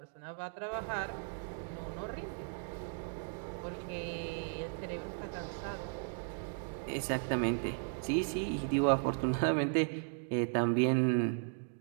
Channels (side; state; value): left; silent; 54 dB below the other